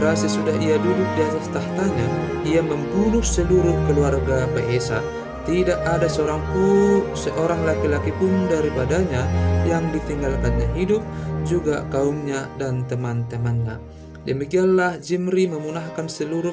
sesudah ia duduk di atas tahtanya, ia membunuh seluruh keluarga Baesa. Tidak ada seorang laki-laki pun daripadanya yang ditinggalkannya hidup, juga kaumnya dan teman-temannya. Demikianlah Zimri memunahkan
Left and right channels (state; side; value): identical; both; correlation 1.00